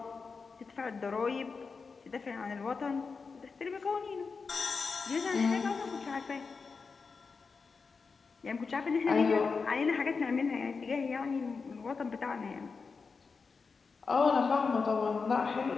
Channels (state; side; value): quieter; right; 4.9 dB